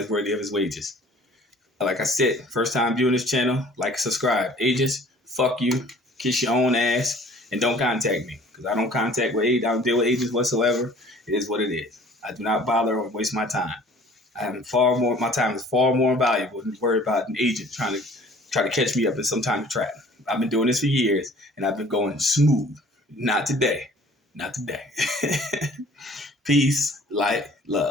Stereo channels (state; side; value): normal; both; correlation 0.51